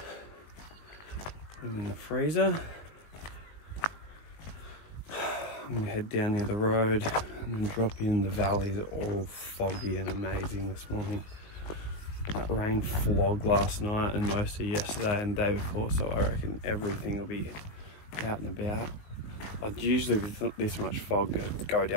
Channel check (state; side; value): late; right; 19 ms